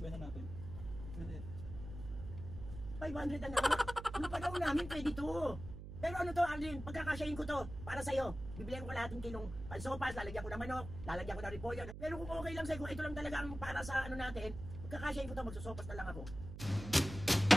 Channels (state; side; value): noise; right; hum, 10 dB below the sound